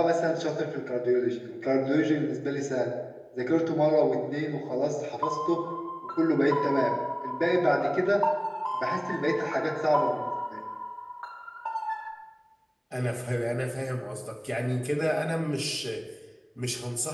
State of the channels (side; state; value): both; identical; correlation 1.00